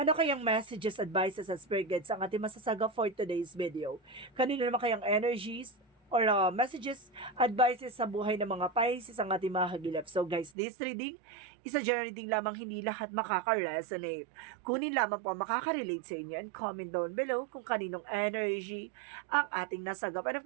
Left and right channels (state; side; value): drops out; left; at 10.6 s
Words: kayang messages, advices, at spirit guides ang ating masasaga for today's video? Kanino naman kayang energies or messages, advices sa buhay ng mga Pisces ang ating mga hagilap. So guys, this reading is a general reading lamang, hindi lahat makaka-resonate. Kunin lamang po ang makaka-relate sa inyo and comment down below kung kaninong energy ang ating nasagap. And of